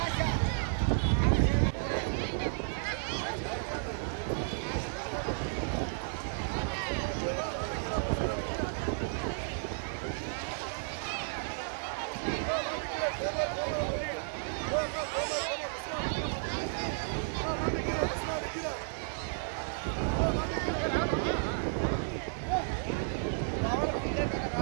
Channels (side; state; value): left; silent; 56 dB below the other